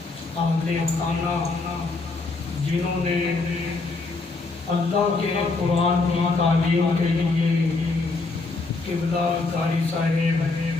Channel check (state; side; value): quieter; right; 3.7 dB